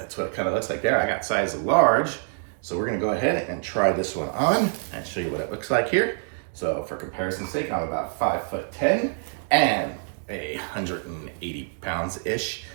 what it kind of looks like there. I got size large. So we're gonna go ahead and try this one on and show you what it looks like here. So for comparison's sake, I'm about 5'10" and 180 pounds-ish.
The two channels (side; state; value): left; silent; 61 dB below the other